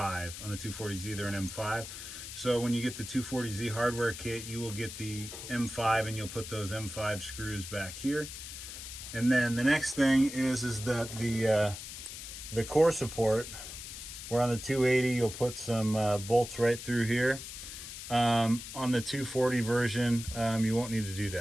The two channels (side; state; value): left; noise; hiss, 10 dB below the sound